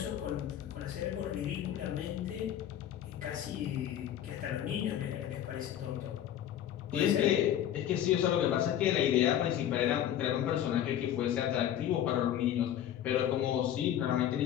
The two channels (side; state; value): right; quieter; 10.9 dB